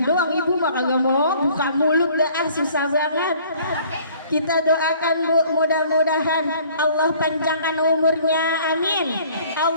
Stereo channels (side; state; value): both; inverted; correlation -0.55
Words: doang, ibu mah kagak mau buka mulut dah, susah banget. Kita doakan Bu, mudah-mudahan Allah panjangkan umurnya, amin.